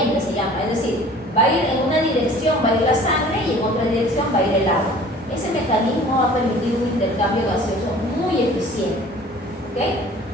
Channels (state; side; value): normal; both; correlation 0.48